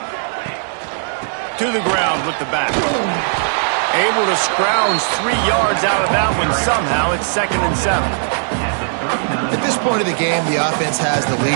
To the ground with the back. Able to scrounge 3 yards out of that one somehow. It's 2nd and 7. At this point of the game, the offense has the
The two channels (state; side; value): silent; left; 68 dB below the other